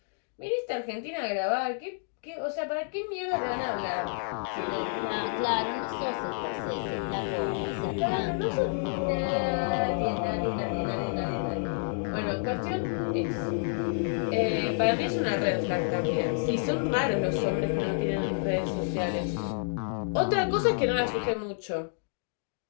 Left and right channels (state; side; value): silent; right; digital silence